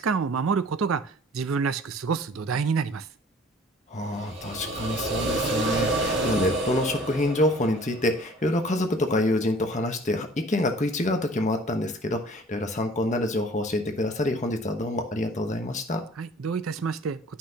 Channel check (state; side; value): normal; both; correlation 0.50